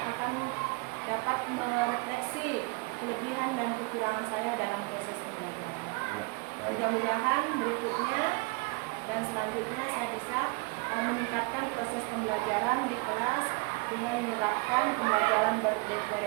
akan dapat merefleksi kelebihan dan kekurangan saya dalam proses pembelajaran. Mudah-mudahan berikutnya dan selanjutnya saya bisa meningkatkan proses pembelajaran di kelas dengan menerapkan pembelajaran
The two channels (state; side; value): quieter; left; 28.3 dB